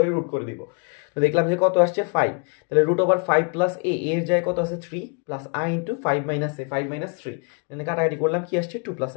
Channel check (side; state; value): right; quieter; 37.9 dB